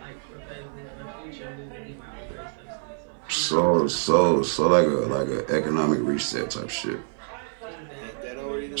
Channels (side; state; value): left; silent; digital silence